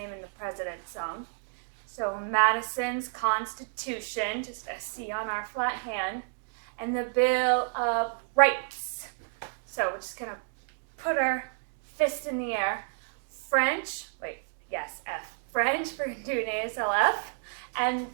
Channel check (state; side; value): silent; left; digital silence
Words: in the President's song. So Madison's Constitution, just a C on our flat hand, and the Bill of Rights. So we're just going to put our fist in the air. French, F. French, we're going to do an ASLF, and